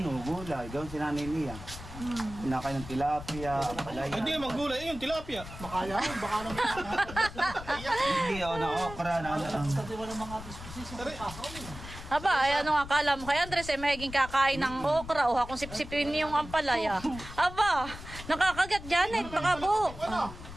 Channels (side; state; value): left; noise; rumble, 12 dB below the sound